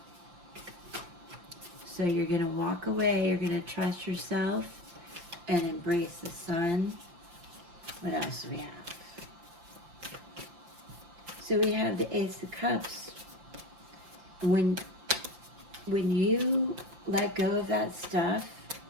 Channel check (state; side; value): late; left; 5.8 ms